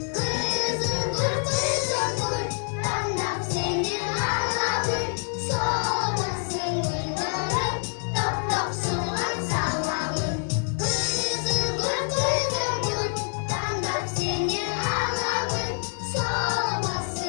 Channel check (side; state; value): right; silent; 56 dB below the other